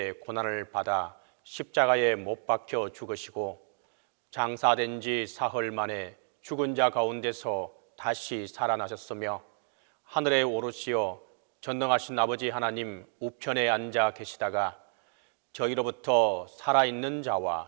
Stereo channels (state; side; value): silent; left; 57 dB below the other